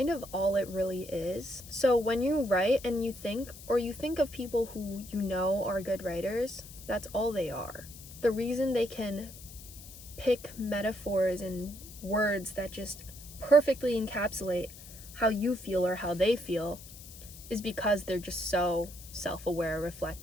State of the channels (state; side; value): noise; left; hiss, 16 dB below the sound